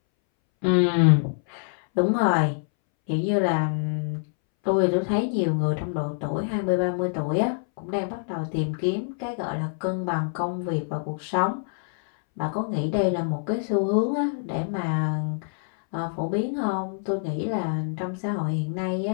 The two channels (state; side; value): silent; right; 61 dB below the other